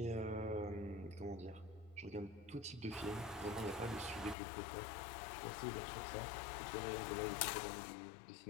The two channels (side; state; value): right; drops out; at 4.4 s